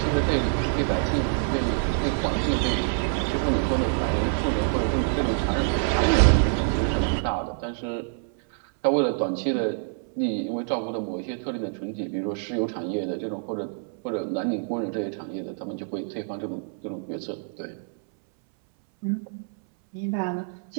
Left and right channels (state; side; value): silent; left; 61 dB below the other